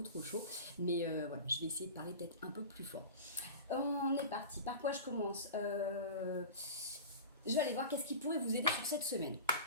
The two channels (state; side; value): inverted; both; correlation -0.32